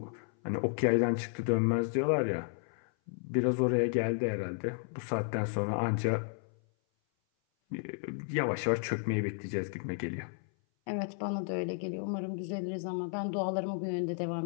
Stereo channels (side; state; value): right; silent; 56 dB below the other